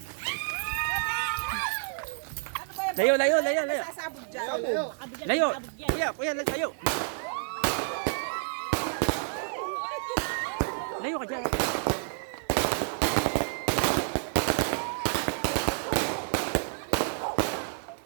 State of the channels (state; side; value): silent; left; 58 dB below the other